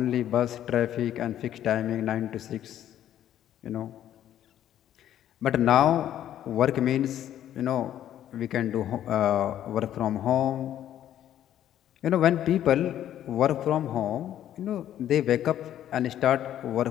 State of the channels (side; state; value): right; quieter; 11.4 dB